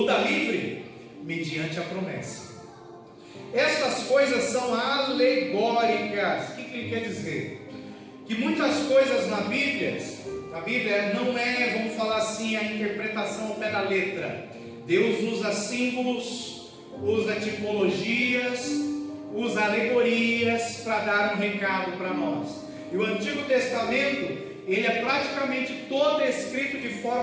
da livre mediante a promessa. Estas coisas são alegóricas. O que ele quer dizer? Que muitas coisas na Bíblia não é, vamos falar assim, a interpretação ao pé da letra. Deus usa símbolos, usa tipologias, usa alegorias para dar um recado para nós. E o Antigo Testamento, ele é praticamente todo escrito de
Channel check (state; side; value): identical; both; correlation 1.00